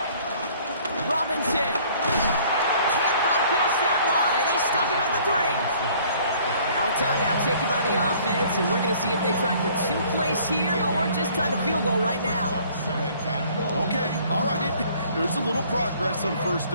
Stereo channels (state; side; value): inverted; both; correlation -0.56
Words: Robinson can't bypass that line. They stop him at the 3. Now a timeout taken by the offense, and we're going to see if they try for 2 plays here or just try to field goal right now. Okay, all right. There's a little progress on 1st